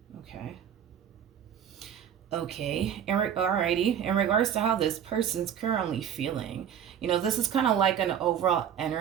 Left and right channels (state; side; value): quieter; left; 9.1 dB